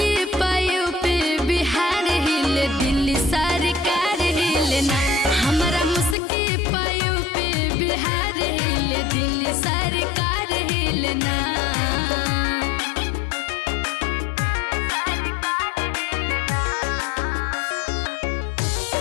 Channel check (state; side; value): drops out; right; at 6.2 s